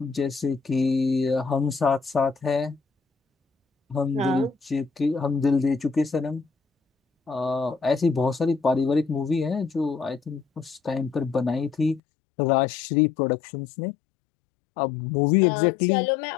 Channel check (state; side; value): drops out; right; at 12.0 s